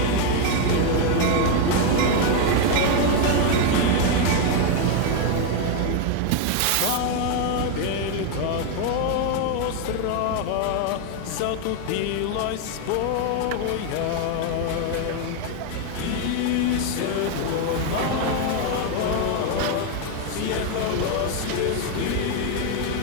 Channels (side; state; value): both; different; correlation 0.01